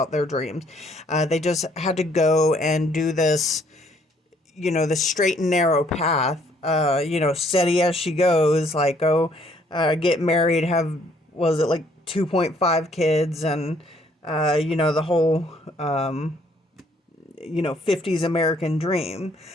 their dreams. They just had to go and do this, the straight and narrow path. Steady as she goes, like go get married, have, was it like 2.5 kids, and the whole 50s American dream.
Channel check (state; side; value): normal; both; correlation 0.64